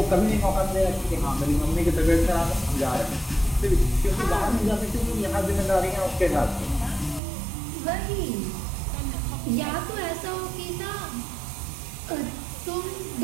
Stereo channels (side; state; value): left; drops out; at 7.2 s